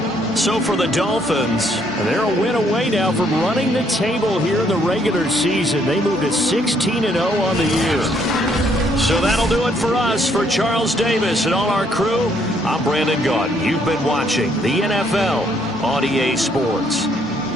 So for the Dolphins, they're a win away now from running the table here in the regular season. They moved to 16-0 on the year. So that'll do it for us. For Charles Davis and all our crew, I'm Brandon Gaudin. You've been watching the NFL on EA Sports.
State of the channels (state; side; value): normal; both; correlation 0.69